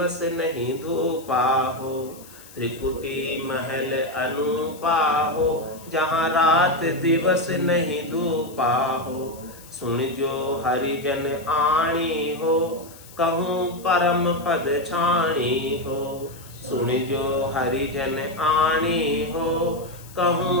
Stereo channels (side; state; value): left; noise; hiss, 20 dB below the sound